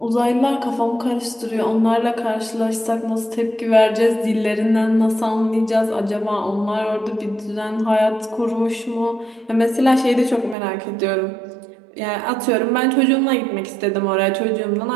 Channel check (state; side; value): drops out; left; at 10.6 s